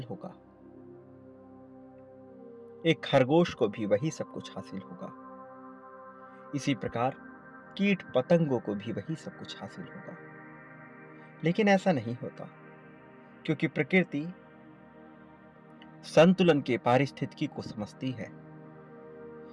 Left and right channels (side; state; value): both; identical; correlation 1.00